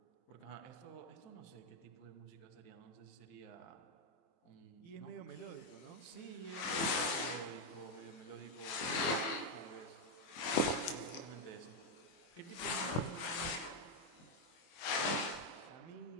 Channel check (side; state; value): right; late; 24 ms